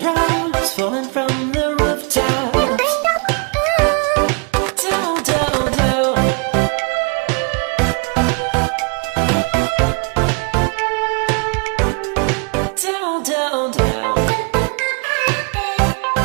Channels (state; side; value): quieter; left; 35.3 dB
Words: falling from the rooftops. Down, down, down. Down, down, down.